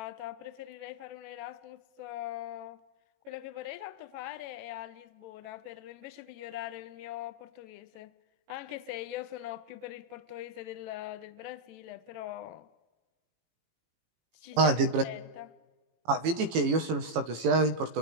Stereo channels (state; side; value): late; left; 18 ms